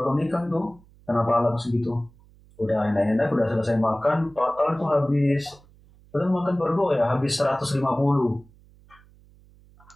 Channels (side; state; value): right; noise; hum, 27 dB below the sound